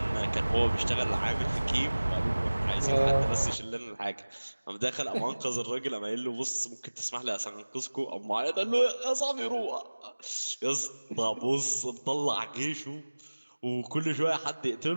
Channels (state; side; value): inverted; both; correlation -1.00